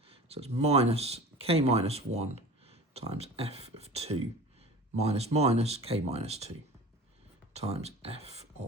So it's minus k minus 1 times f of 2 minus minus k minus 2 times f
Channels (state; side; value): normal; both; correlation 0.39